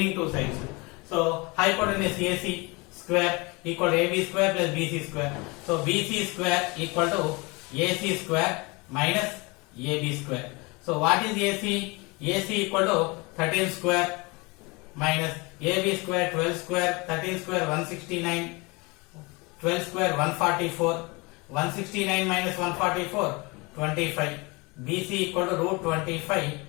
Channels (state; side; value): quieter; right; 26.8 dB